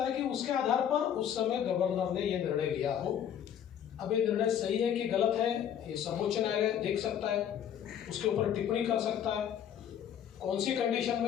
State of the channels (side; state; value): right; quieter; 9.4 dB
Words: है कि उसके आधार पर उस समय गवर्नर ने ये निर्णय लिया हो। अब ये निर्णय सही है कि गलत है, ये सर्वोच्च न्यायालय देख सकता है, उसके ऊपर टिप्पणी कर सकता है। कौन सी कंडीशन